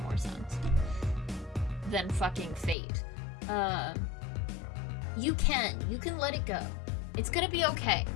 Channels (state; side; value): drops out; right; at 2.8 s